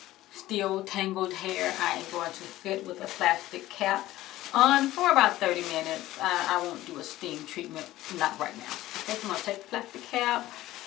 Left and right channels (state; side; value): quieter; right; 15.8 dB